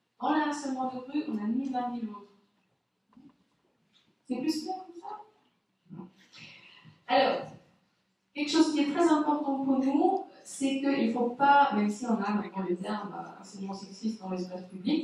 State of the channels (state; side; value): identical; both; correlation 1.00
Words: Dans le harcèlement de rue, on a ni l'un ni l'autre. C'est plus clair comme ça? Non. Alors, quelque chose qui est très important pour nous, c'est qu'il ne faut pas, même si on a maintenant le terme harcèlement sexiste dans l'espace